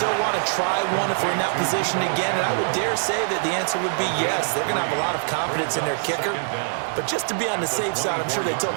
want to try one if we're in that position again? And I would dare say that the answer would be yes. They're going to have a lot of confidence in their kicker. But just to be on the safe side, I'm sure they told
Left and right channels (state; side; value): silent; left; digital silence